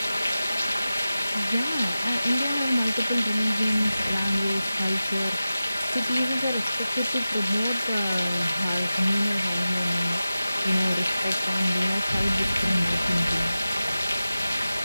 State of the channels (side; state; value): both; inverted; correlation -0.95